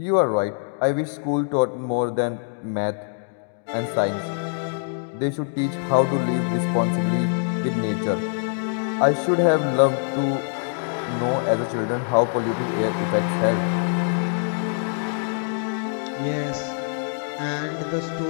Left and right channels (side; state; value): right; silent; digital silence